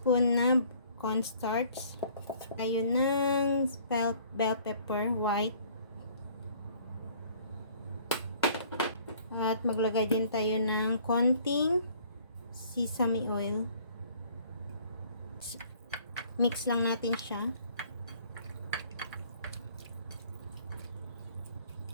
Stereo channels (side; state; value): both; inverted; correlation -0.56